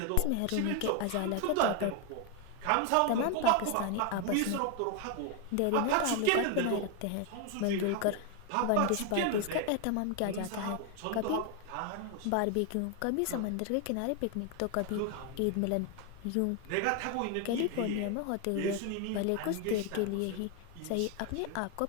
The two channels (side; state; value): both; different; correlation 0.01